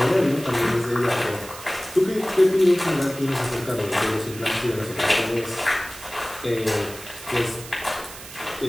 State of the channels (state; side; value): noise; right; hiss, 14 dB below the sound